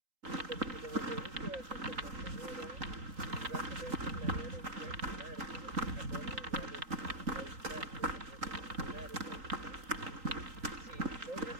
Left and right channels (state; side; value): late; left; 3.8 ms